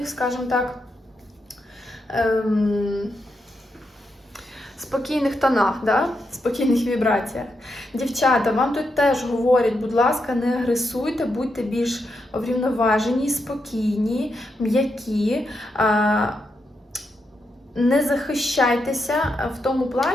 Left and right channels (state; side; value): normal; both; correlation 0.83